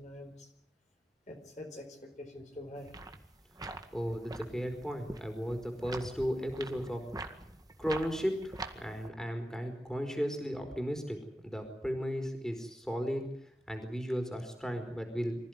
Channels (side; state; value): both; normal; correlation 0.91